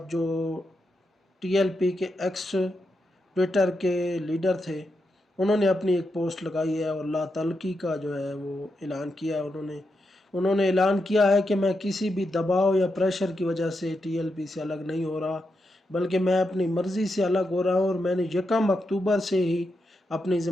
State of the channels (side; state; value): both; normal; correlation 0.85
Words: جو ٹی ایل پی کے ایکس ٹویٹر کے لیڈر تھے، انہوں نے اپنی ایک پوسٹ لگائی ہے اور لا تعلقی کا جو ہے وہ اعلان کیا ہے۔ انہوں نے اعلان کیا ہے کہ میں کسی بھی دباؤ یا پریشر کی وجہ سے ٹی ایل پی سے الگ نہیں ہو رہا، بلکہ میں اپنی مرضی سے الگ ہو رہا ہوں، اور میں نے 1 اکتوبر سے ہی اپنی